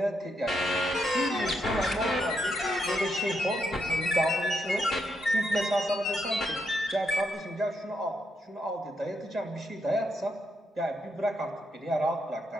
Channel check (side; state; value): both; normal; correlation 0.80